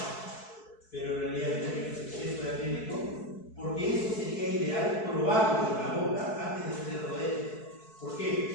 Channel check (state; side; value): late; right; 4.6 ms